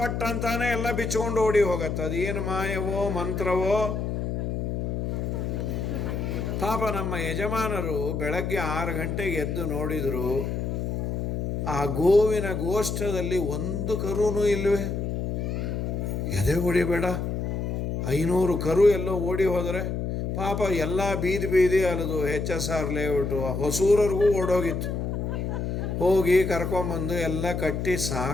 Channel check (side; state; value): left; noise; hum, 2 dB below the sound